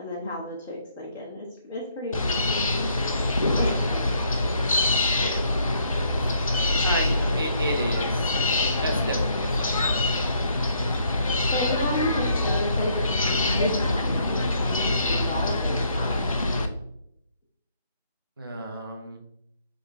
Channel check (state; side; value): inverted; both; correlation -0.69